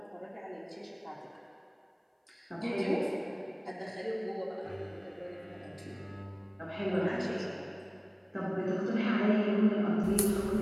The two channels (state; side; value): identical; both; correlation 1.00